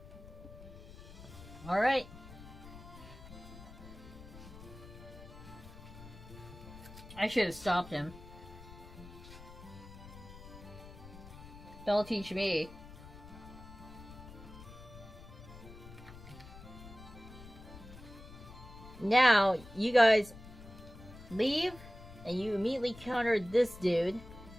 Alright. I should have stopped him. Don't teach me. Now, you guys leave, and you immediately counter this dude.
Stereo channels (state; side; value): noise; left; rumble, 16 dB below the sound